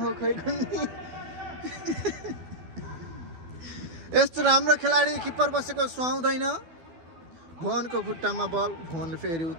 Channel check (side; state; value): left; late; 12 ms